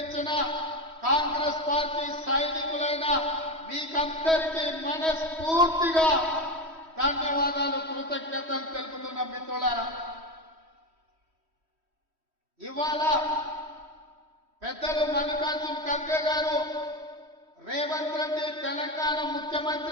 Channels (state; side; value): late; left; 3.1 ms